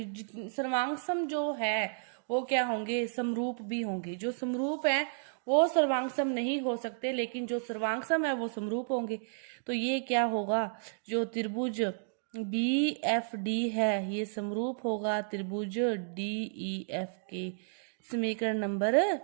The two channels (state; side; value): silent; left; digital silence